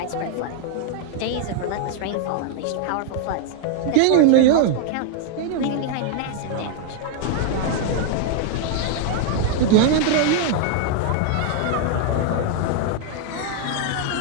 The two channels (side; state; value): both; different; correlation 0.00